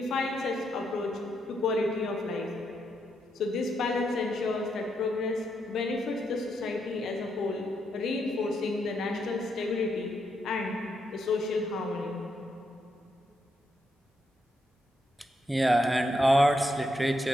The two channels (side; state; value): both; normal; correlation 0.80